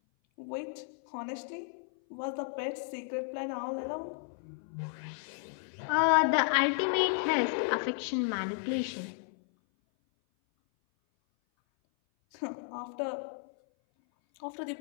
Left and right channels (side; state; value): right; silent; 56 dB below the other